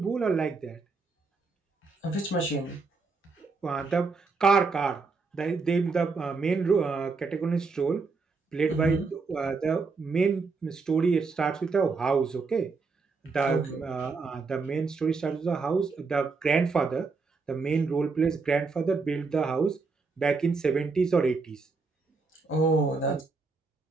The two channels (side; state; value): left; quieter; 4.3 dB